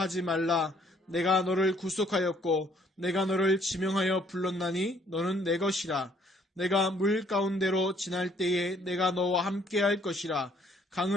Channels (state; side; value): normal; both; correlation 0.63